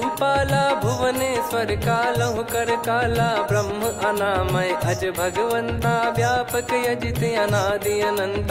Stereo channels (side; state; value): both; identical; correlation 1.00